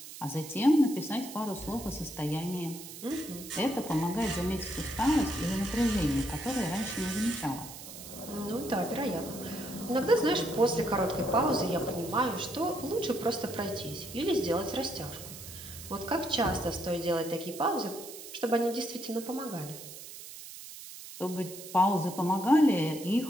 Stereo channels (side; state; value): right; noise; hiss, 13 dB below the sound